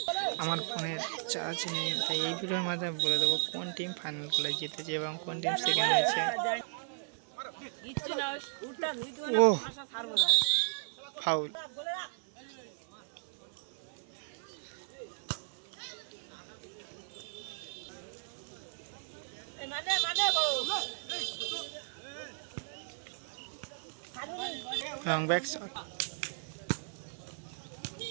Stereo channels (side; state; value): left; silent; 54 dB below the other